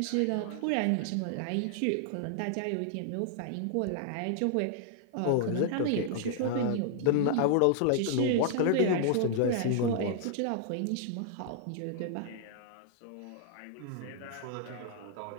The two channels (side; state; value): both; different; correlation -0.01